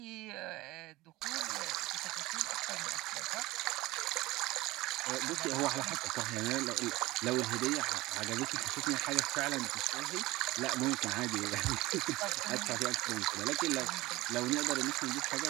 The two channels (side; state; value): left; quieter; 19.3 dB